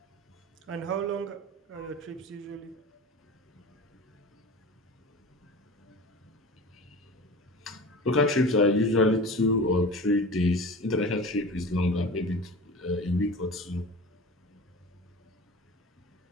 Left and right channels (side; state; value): both; normal; correlation 0.35